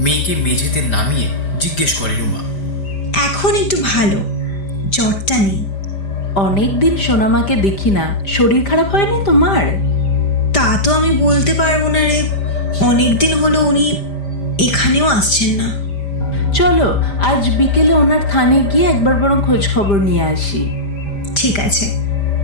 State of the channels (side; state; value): right; late; 5.0 ms